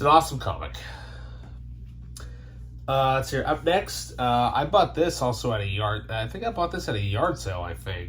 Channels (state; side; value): identical; both; correlation 1.00